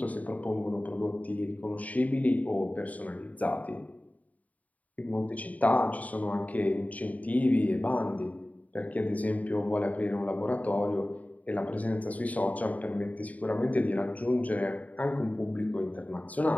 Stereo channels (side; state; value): right; late; 0.072 ms